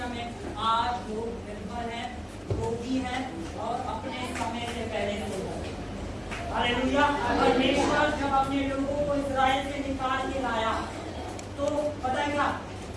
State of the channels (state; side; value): identical; both; correlation 1.00